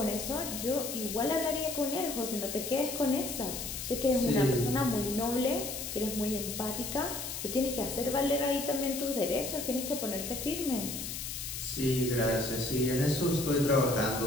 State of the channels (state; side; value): noise; left; hiss, 6 dB below the sound